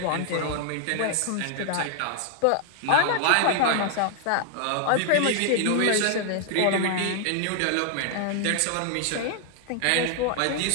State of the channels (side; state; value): both; different; correlation 0.00